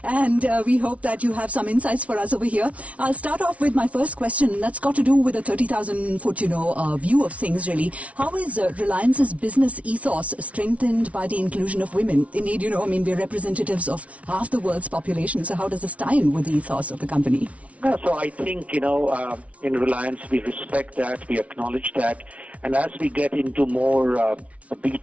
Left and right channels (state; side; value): late; left; 0.065 ms